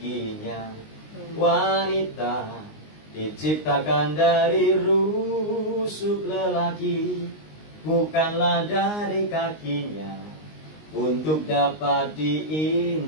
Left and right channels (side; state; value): right; late; 19 ms